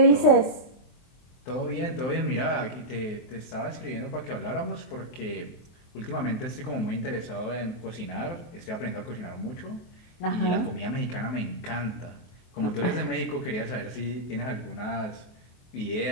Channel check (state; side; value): late; right; 23 ms